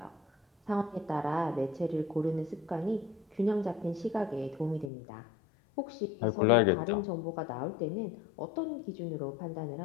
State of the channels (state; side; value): drops out; right; at 4.9 s